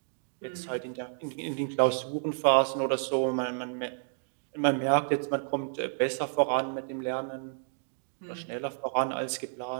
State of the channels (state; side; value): silent; left; digital silence